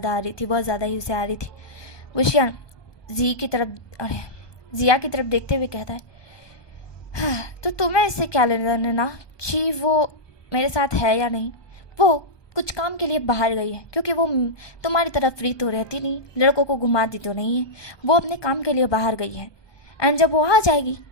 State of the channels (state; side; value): late; right; 1.2 ms